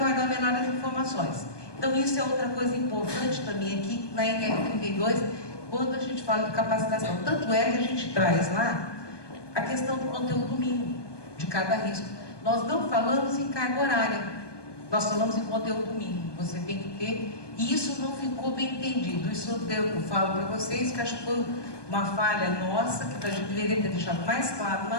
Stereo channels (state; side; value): late; right; 1.2 ms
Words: melhores informações. Então isso é outra coisa importante também aqui na NR32, quando a gente fala de capacitação. Tanto é que a gente traz lá a questão do conteúdo mínimo de cada risco. Nós não falamos em carga horária, nós falamos em conteúdo mínimo. Você tem que ter, e isso não ficou bem entendido. Isso eu falo para vocês que acho que foi uma falha nossa, que a gente deveria ter deixado mais claro na